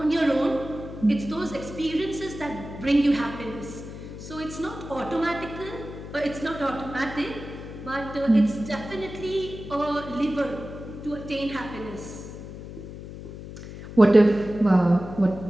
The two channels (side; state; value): left; noise; hum, 12 dB below the sound